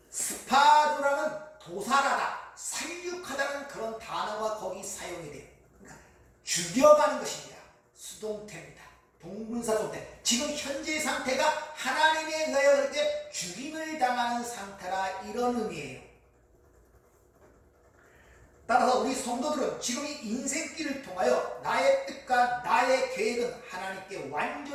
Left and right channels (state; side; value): identical; both; correlation 1.00